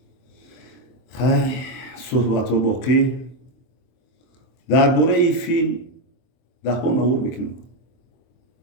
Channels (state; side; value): late; right; 23 ms